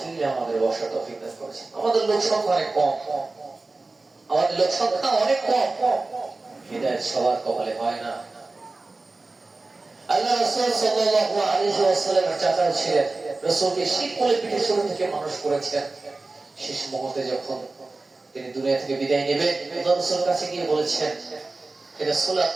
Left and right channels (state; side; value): quieter; left; 3.4 dB